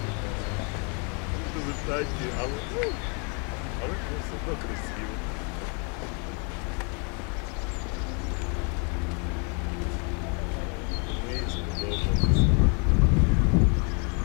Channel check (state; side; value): quieter; right; 36.1 dB